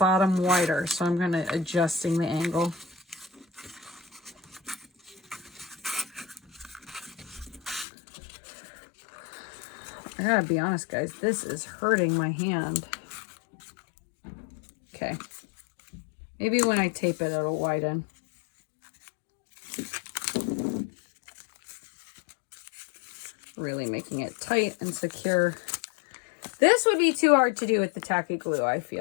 wider. So I'm going to adjusting the angle. I gotta be honest, guys, this is hurting my hand. Okay. Maybe when I tape it, it'll widen. Really making it tight and secure. This would be too hard to do with the tacky glue, I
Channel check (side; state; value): right; drops out; at 7.9 s